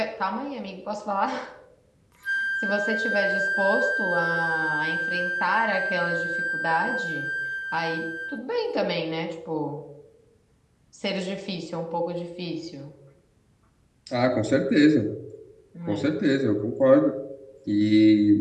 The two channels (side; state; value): both; identical; correlation 1.00